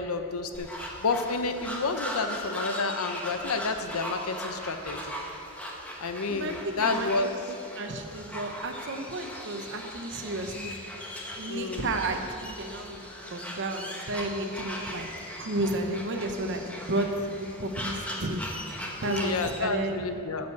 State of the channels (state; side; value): normal; both; correlation -0.01